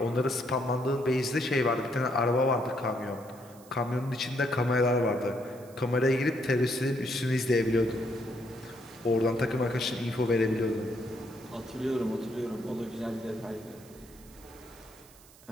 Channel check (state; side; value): noise; right; hiss, 24 dB below the sound